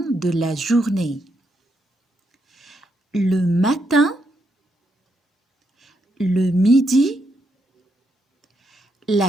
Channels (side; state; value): both; normal; correlation 0.80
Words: de la journée. Le matin, le midi,